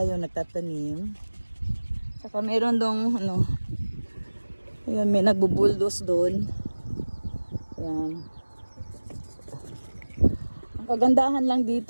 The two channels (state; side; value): inverted; both; correlation -1.00